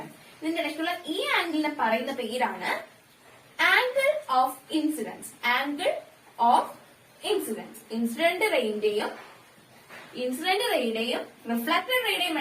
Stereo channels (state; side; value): identical; both; correlation 1.00